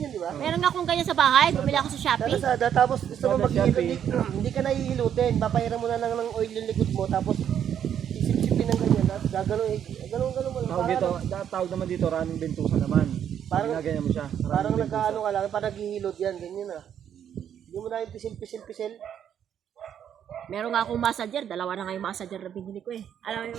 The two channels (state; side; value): quieter; left; 9.2 dB